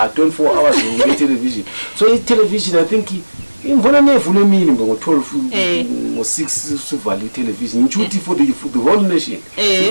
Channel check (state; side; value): inverted; both; correlation -1.00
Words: hours nge-television. So i-television I think imvona nevule emini ngo-12 ngo-6 sivale i-television ngishuthi for the whole nation